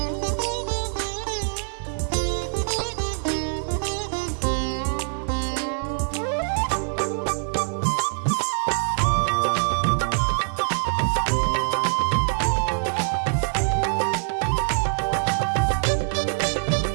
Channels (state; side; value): silent; left; 62 dB below the other